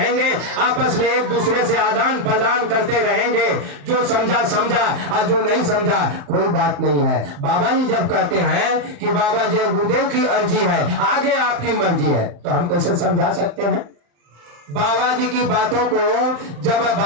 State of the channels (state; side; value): late; left; 35 ms